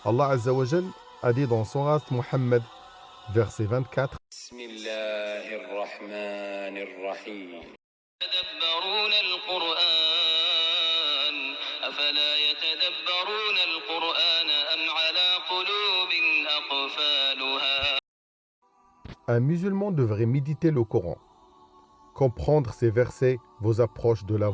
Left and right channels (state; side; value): identical; both; correlation 1.00